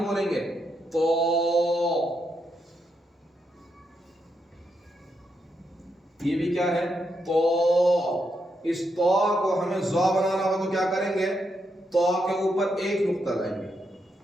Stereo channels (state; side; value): normal; both; correlation 0.81